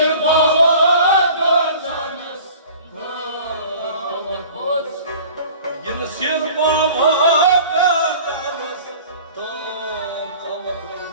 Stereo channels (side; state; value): both; inverted; correlation -0.44